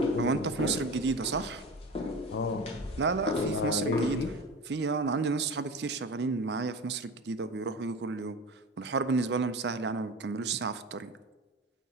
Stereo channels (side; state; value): both; normal; correlation 0.31